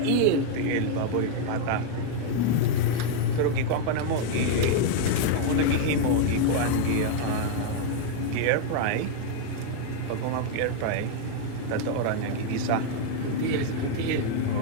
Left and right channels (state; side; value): different; both; correlation 0.00